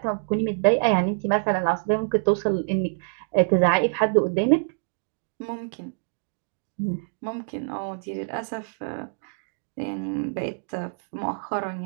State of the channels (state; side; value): silent; left; digital silence